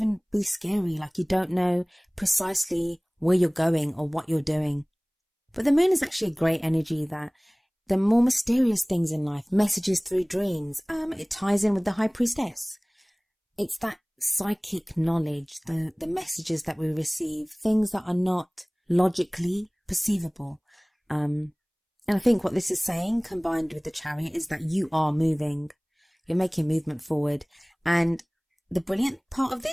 be scary, like you don't know precisely where you're going or what you're doing. But the moon is actually a great energy that the more mysterious things in life, messages through dreams, it ties in with the High Priestess. It's that psychic knowledge, the messages that we receive, things that are not logically perceivable. And I think what this is saying, combined with the Chariot, is that you are moving. You're making movement forward. And the brilliant part of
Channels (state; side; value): identical; both; correlation 1.00